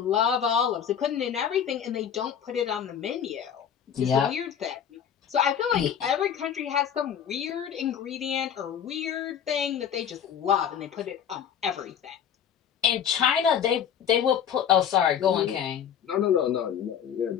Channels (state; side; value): quieter; right; 8.6 dB